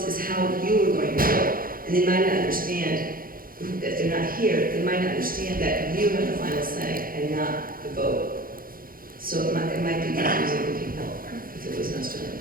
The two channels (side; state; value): left; late; 0.42 ms